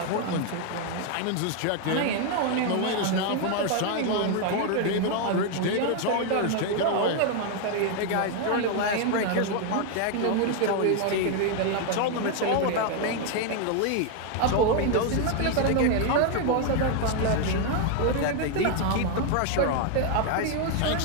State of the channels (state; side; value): different; both; correlation 0.00